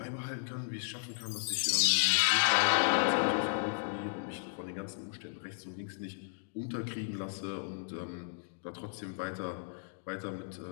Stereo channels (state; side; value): silent; right; digital silence